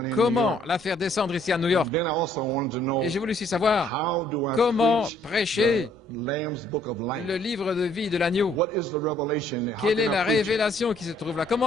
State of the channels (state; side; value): normal; both; correlation 0.64